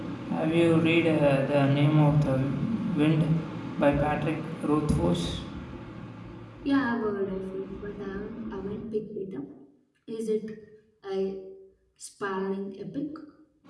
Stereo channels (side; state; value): both; identical; correlation 1.00